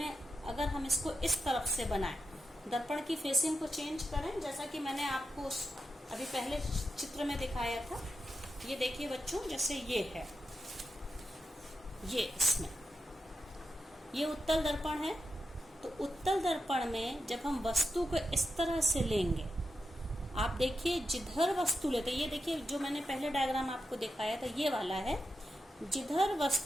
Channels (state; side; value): normal; both; correlation 0.88